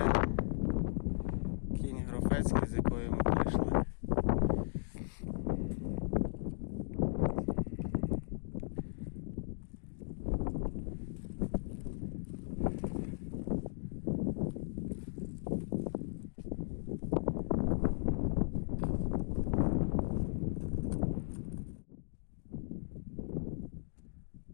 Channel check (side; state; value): right; silent; digital silence